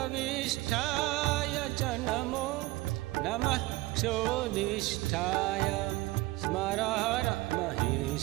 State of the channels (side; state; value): left; quieter; 19.6 dB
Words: वसिष्ठाय च नमो नमः क्षोदिष्ठाय स्मरहर